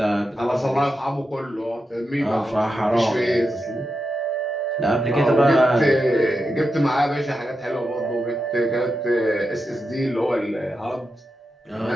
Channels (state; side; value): normal; both; correlation 0.88